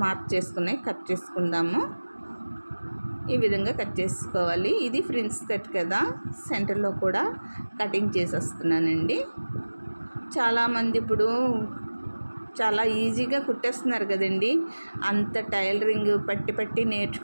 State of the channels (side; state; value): both; inverted; correlation -1.00